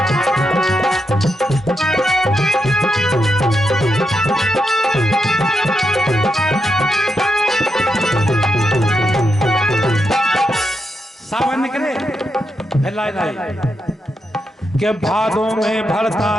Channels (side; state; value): both; normal; correlation 0.84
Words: फैलाए नहीं के भादों में